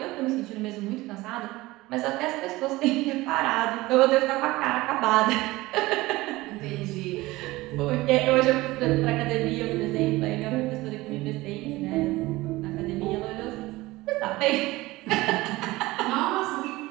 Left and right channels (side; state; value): left; quieter; 19.5 dB